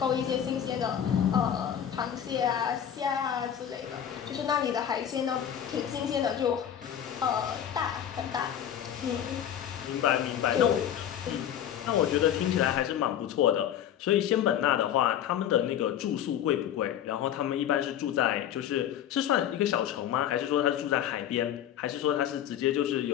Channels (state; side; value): quieter; right; 10.0 dB